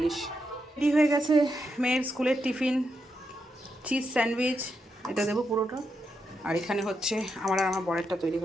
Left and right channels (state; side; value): normal; both; correlation 0.83